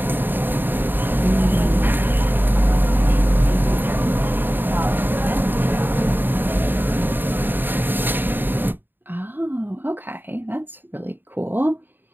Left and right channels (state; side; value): late; left; 0.093 ms